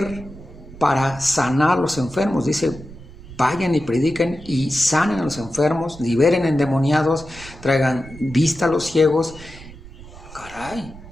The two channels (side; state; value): right; noise; rumble, 17 dB below the sound